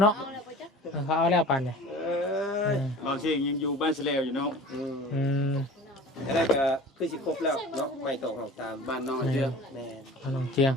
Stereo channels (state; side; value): normal; both; correlation 0.41